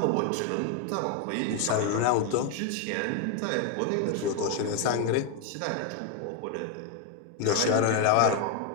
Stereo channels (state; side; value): different; both; correlation 0.01